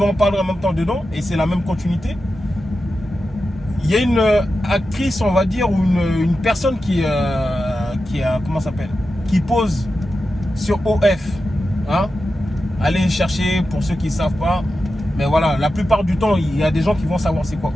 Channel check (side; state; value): both; normal; correlation 0.91